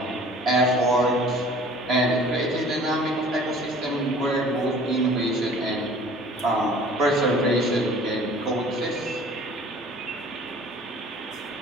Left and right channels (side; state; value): both; normal; correlation 0.48